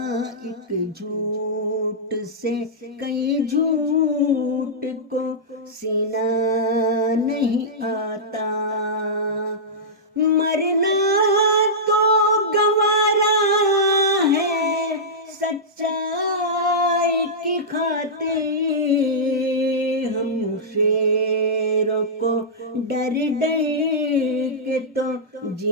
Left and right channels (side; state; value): both; normal; correlation -0.13